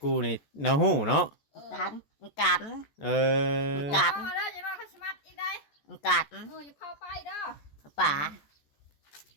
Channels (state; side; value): late; right; 14 ms